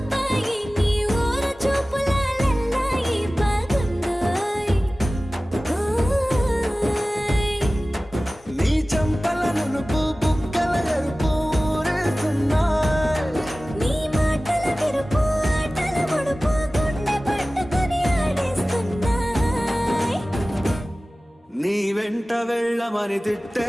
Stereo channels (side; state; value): both; normal; correlation 0.97